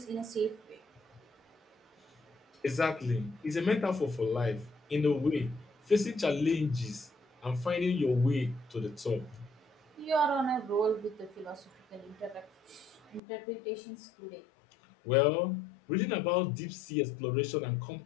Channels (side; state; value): right; drops out; at 13.2 s